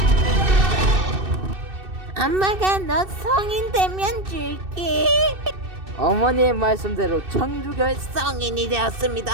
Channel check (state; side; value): late; left; 2.6 ms